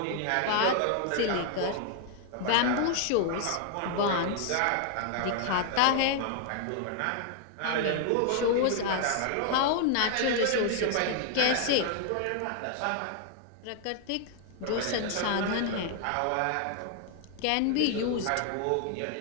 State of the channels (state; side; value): different; both; correlation 0.00